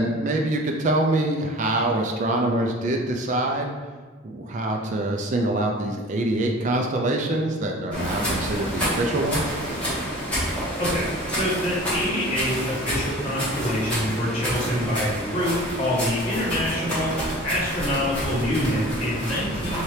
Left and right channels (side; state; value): both; normal; correlation 0.42